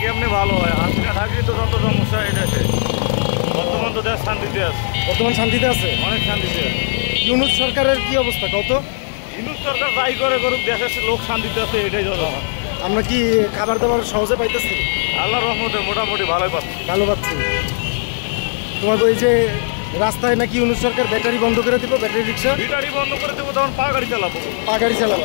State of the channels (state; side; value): silent; right; digital silence